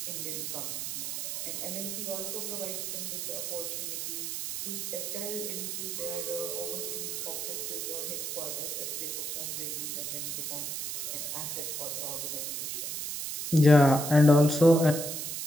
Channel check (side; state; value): right; noise; hiss, 4 dB below the sound